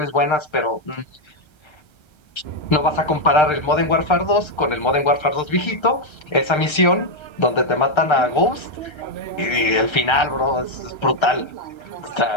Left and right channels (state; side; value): late; right; 1.3 ms